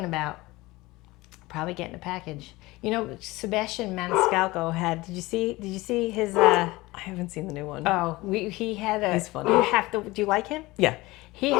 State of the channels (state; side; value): quieter; right; 20.5 dB